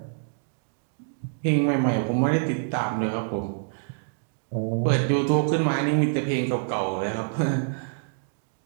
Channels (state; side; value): silent; left; digital silence